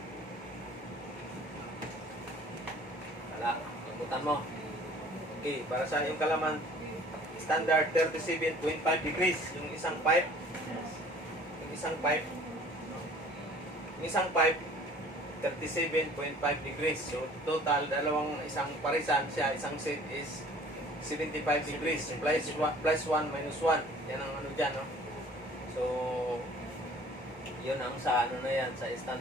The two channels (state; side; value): normal; both; correlation 0.51